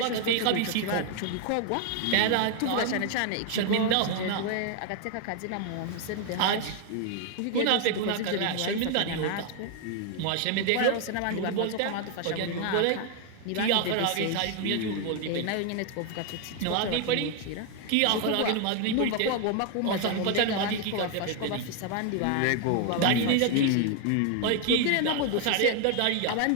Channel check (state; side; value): different; both; correlation 0.00